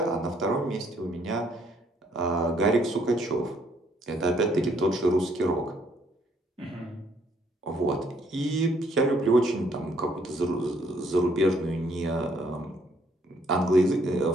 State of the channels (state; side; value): normal; both; correlation 0.67